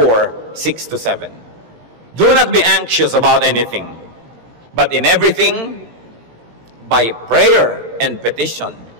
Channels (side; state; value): left; late; 18 ms